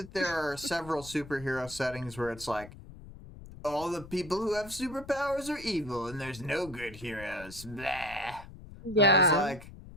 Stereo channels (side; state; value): left; noise; rumble, 16 dB below the sound